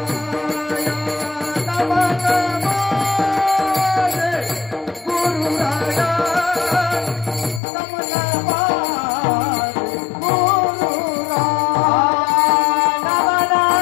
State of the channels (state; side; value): drops out; right; at 7.6 s